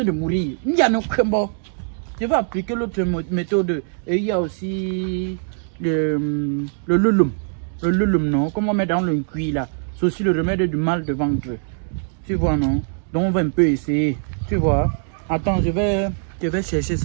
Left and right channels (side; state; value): left; silent; digital silence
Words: de mourir. Il y a no bon. Je vais appliquer l'autre méthode. Et il y a aussi le lulum. Le lulum, non? Comme on met dans le cuit là. C'est aussi le remède du mal de ventre. Tu vois, non? Donc on va un peu essayer. Tu vois? Attends, je vais chercher